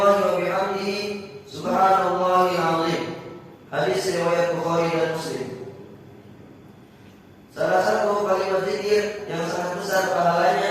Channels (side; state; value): both; identical; correlation 1.00